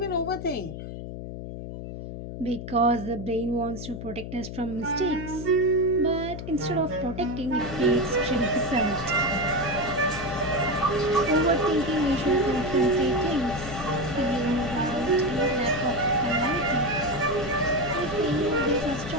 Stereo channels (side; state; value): left; noise; hum, 9 dB below the sound